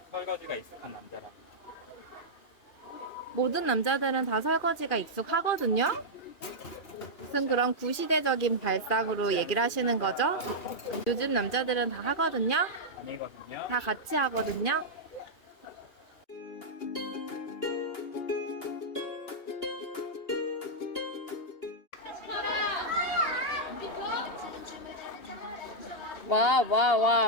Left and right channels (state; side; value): late; right; 2.8 ms